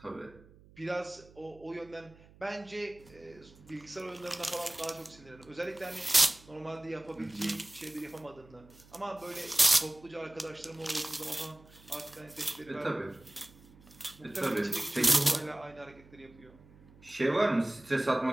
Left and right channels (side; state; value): right; noise; hum, 24 dB below the sound